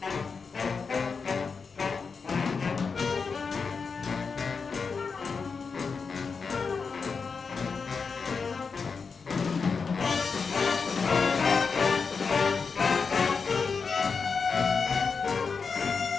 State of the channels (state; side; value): quieter; right; 5.2 dB